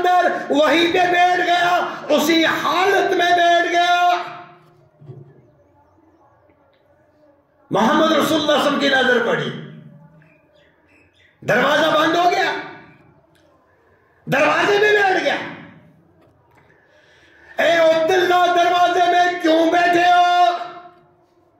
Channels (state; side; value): identical; both; correlation 1.00